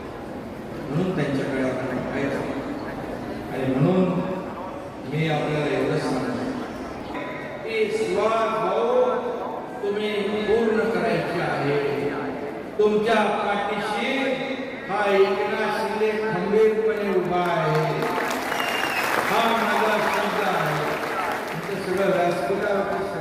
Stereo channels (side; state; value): both; identical; correlation 1.00